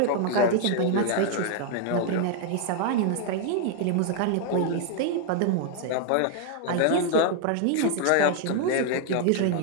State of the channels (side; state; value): both; different; correlation 0.00